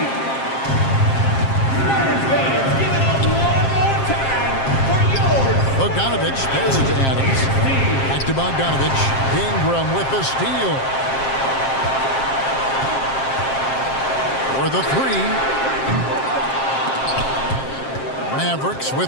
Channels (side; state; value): right; late; 7.5 ms